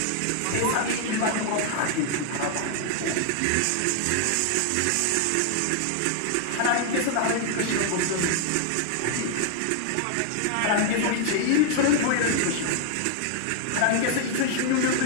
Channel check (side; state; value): both; different; correlation 0.00